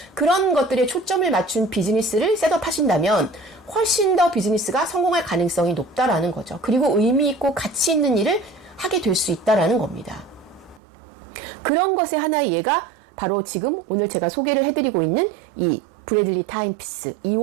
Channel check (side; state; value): left; drops out; at 10.8 s